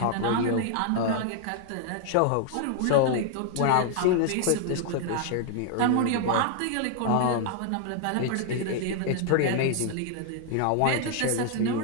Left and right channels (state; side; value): different; both; correlation 0.00